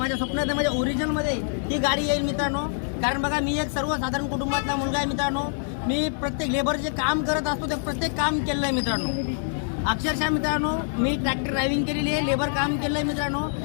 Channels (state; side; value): silent; right; digital silence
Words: स्वप्नात माझ्या ओरिजिनलमध्ये ही गाडी येईल मित्रांनो। कारण बघा, मी एक सर्वसाधारण कुटुंबातला मुलगा आहे मित्रांनो। मी प्रत्येक लेबर जे काम करत असतो ते प्रत्येक काम केलं आहे मित्रांनो। अक्षरशः मित्रांनो, मी ट्रॅक्टर ड्रायव्हिंग केलेली आहे, लेबर काम केलं आहे